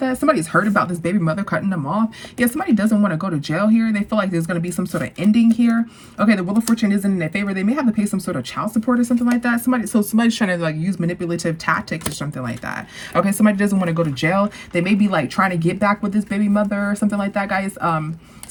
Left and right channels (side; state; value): both; identical; correlation 1.00